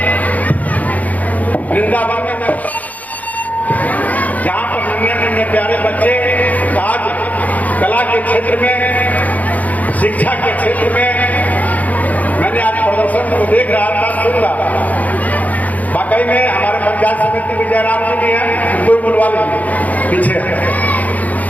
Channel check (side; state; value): right; late; 0.076 ms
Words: वृंदावन में जहां पर नन्हे नन्हे प्यारे बच्चे आज कला के क्षेत्र में, शिक्षा के क्षेत्र में, मैंने आज प्रदर्शन को देख रहा था, सुन रहा था। वाकई में हमारे पंचायत समिति विजयराम जी भी हैं, कोई बुलवा लीजिए पीछे।